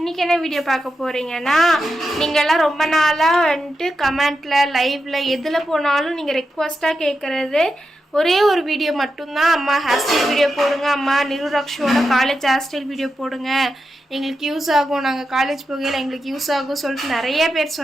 என்ன வீடியோ பார்க்க போகிறீங்கன்னா, நீங்கள்லாம் ரொம்ப நாளாக வந்துட்டு கமெண்ட்டில் லைவில் எதில் போனாலும் நீங்கள் ரெக்வஸ்ட்டாக கேட்குறது ஒரே ஒரு வீடியோ மட்டும்தான். அம்மா ஹேர் ஸ்டைல் வீடியோ போடுங்க, அம்மா நிருரக்ஷோட காலேஜ் ஹேர் ஸ்டைல் வீடியோ போடுங்க, எங்களுக்கு யூஸ் ஆகும், நாங்கள் காலேஜ் போகையில் எங்களுக்கு யூஸ் ஆகும் சொல்லிட்டு நிறைய பேர்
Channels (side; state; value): both; normal; correlation 0.88